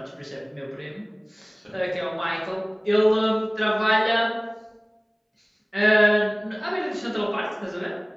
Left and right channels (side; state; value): both; identical; correlation 1.00